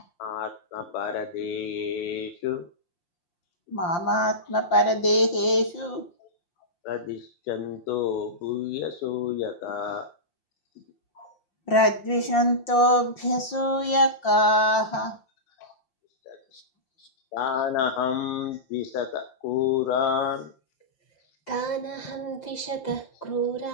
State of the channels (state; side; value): late; right; 5.7 ms